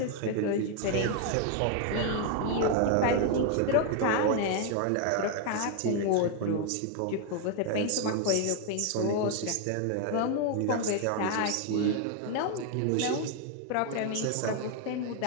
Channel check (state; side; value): different; both; correlation 0.00